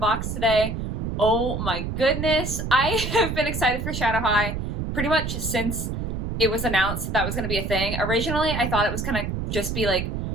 today. Oh my goodness, I have been excited for Shadow High pretty much since it was announced that was going to be a thing. Originally, I thought it was going to just be like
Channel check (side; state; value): right; noise; rumble, 3 dB below the sound